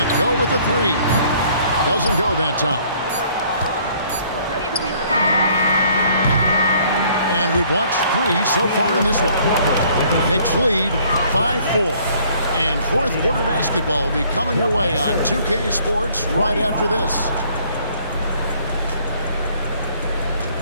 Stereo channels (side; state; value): both; inverted; correlation -0.60